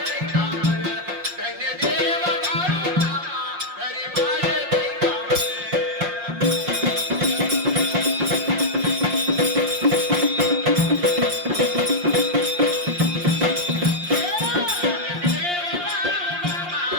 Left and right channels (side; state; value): left; late; 5.6 ms